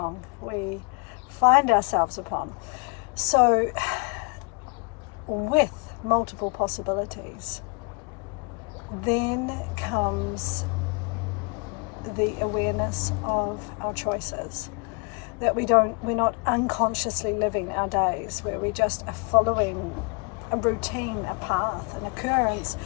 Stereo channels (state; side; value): quieter; right; 32.7 dB